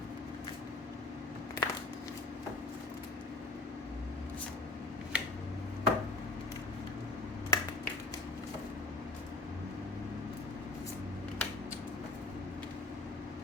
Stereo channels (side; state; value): right; quieter; 3.1 dB